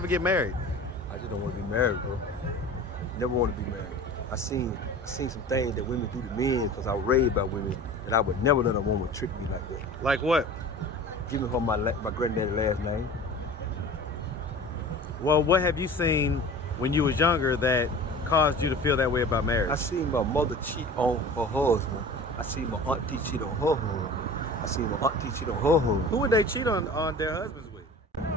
get married? I just don't want to be married, bro. Never want to be married. I seen some things that women do to men because I was raised by women that I would never let a woman trick me like that. Like what? Give me her my granddaddy's last name. Well, what have you seen when you was younger that caused you to feel that way about marriage? I seen my mother cheat on her husband. I seen my auntie cheat on her husband. I seen my auntie cheat on her husband. Who would they cheat on their husbands with?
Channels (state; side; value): normal; both; correlation 0.39